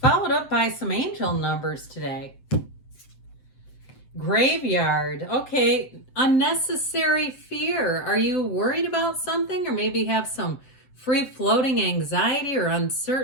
up by some angel numbers today. Graveyard. Okay, unnecessary fear. Are you worried about something or maybe have some free-floating anxiety or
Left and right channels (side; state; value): right; late; 7.9 ms